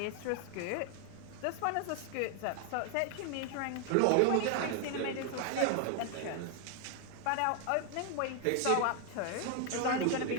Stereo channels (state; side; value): different; both; correlation 0.00